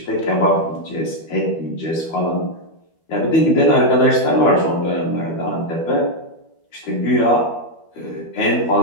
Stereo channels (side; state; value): right; late; 12 ms